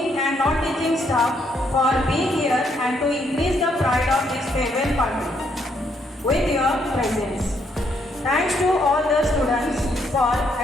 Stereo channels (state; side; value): normal; both; correlation 0.73